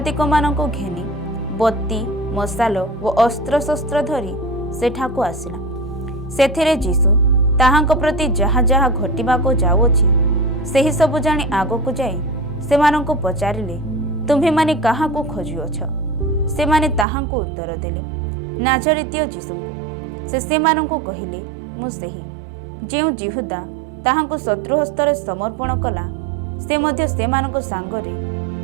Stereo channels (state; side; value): drops out; left; at 17.1 s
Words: ଘେନି ବତୀ, ମଶାଲ ଓ ଅସ୍ତ୍ରଶସ୍ତ୍ର ଧରି ସେଠାକୁ ଆସିଲା। ସେଥିରେ ଯୀଶୁ ତାହାଙ୍କ ପ୍ରତି ଯାହା ଯାହା ଘଟିବାକୁ ଯାଉଅଛି ସେହି ସବୁ ଜାଣି ଆଗକୁ ଯାଇ ସେମାନଙ୍କୁ ପଚାରିଲେ, ତୁମ୍ଭେମାନେ କାହାକୁ ଖୋଜୁଅଛ? ସେମାନେ ତାହାଙ୍କୁ ଉତ୍ତର ଦେଲେ, ନାଜରିତୀୟ ଯୀଶୁଙ୍କୁ। ସେ ସେମାନଙ୍କୁ କହିଲେ, ମୁଁ ସେହି। ଯେଉଁ ଯିହୁଦା ତାହାଙ୍କୁ ଶତ୍ରୁ ହସ୍ତରେ ସମର୍ପଣ କଲା ସେ ମଧ୍ୟ ସେମାନଙ୍କ ସାଙ୍ଗରେ